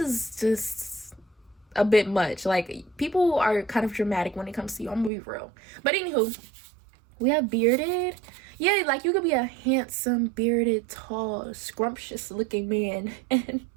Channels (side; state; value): left; drops out; at 5.1 s